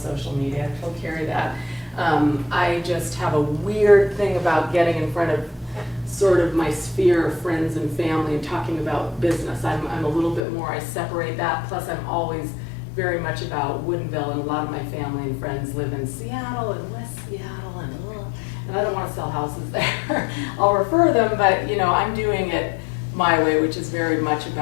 media. I told Carrie that. I just have a weird thing about getting in front of sort of my sphere of friends and family and talking about business. I'm a little bit more, I separate that. Plus I'm always very much about Woodinville, and a lot of my family and friends live in Seattle and West Seattle, and I don't want to sell houses there. I'll refer them, but you know, I'm doing it my way, which is very much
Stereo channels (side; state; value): right; drops out; at 10.4 s